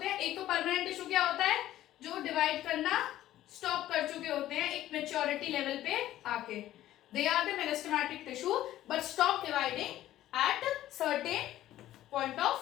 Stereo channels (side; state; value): right; quieter; 13.7 dB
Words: हैं, एक तो परमानेंट टिश्यू क्या होता है? जो डिवाइड करना स्टॉप कर चुके होते हैं एक मैच्योरिटी लेवल पे आके। They are the meristematic tissue but stop dividing at certain point